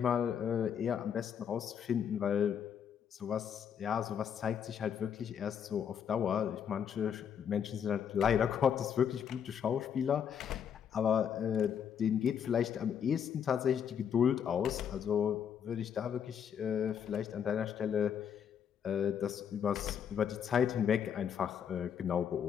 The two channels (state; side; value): quieter; right; 8.2 dB